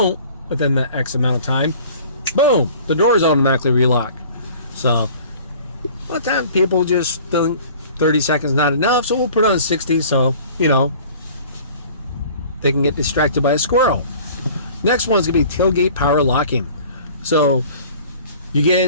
within that X amount of time, boom, the doors automatically relock. So a lot of times people just think 30 seconds not enough, so we'll put on 60 so they can get distracted by a squirrel. Next one's gonna be tailgate power locking. So you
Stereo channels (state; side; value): inverted; both; correlation -0.47